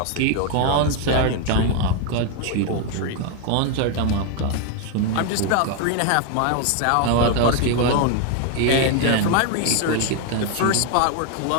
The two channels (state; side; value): different; both; correlation 0.00